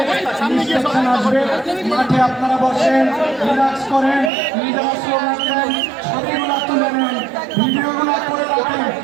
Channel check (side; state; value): left; drops out; at 4.3 s